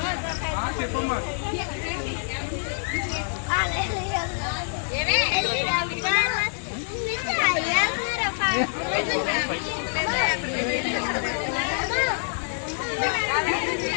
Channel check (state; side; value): silent; right; 61 dB below the other